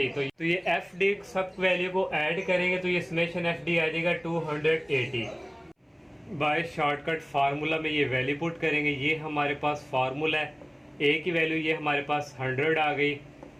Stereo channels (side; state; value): both; identical; correlation 1.00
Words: तो ये एफ डी सब वैल्यू को ऐड करेंगे तो ये समेशन एफ डी आ जाएगा 280। बाय शॉर्टकट फार्मूला में ये वैल्यू पुट करेंगे। ये हमारे पास फार्मूला है, ए की वैल्यू ये हमारे पास 100 आ गई,